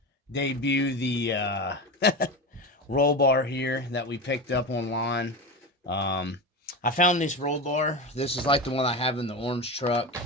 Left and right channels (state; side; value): normal; both; correlation 0.23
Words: debut the roll bar here that we picked up online. I found this roll bar. This is like the one I have in the orange truck,